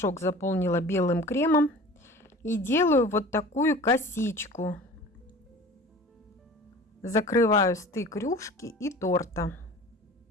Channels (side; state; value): both; normal; correlation 0.41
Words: заполнила белым кремом. И делаю вот такую косичку. Закрываю стык рюшки и торта.